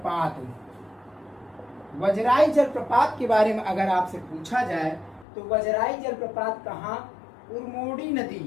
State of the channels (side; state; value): right; drops out; at 5.2 s